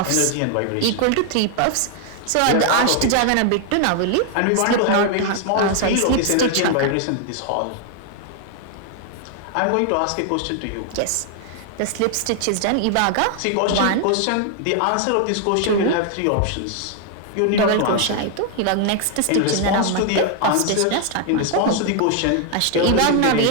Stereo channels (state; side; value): different; both; correlation 0.00